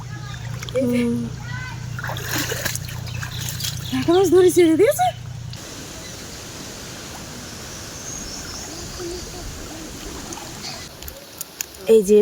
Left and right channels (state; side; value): identical; both; correlation 1.00